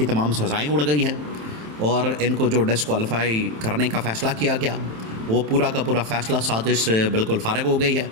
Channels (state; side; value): late; left; 27 ms